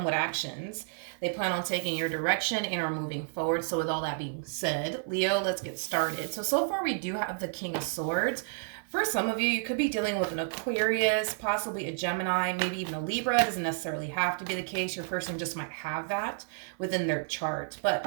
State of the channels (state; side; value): silent; left; 57 dB below the other